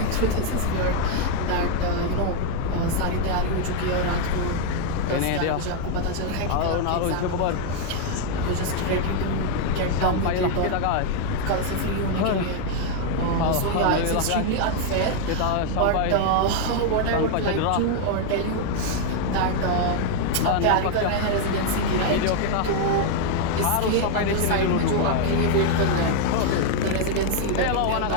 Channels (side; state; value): both; different; correlation 0.00